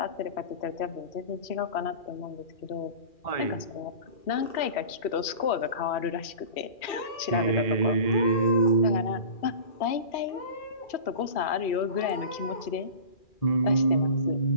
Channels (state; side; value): late; right; 2.4 ms